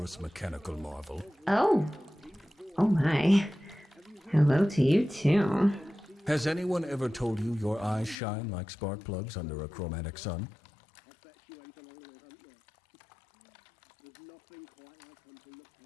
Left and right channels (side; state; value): right; drops out; at 8.2 s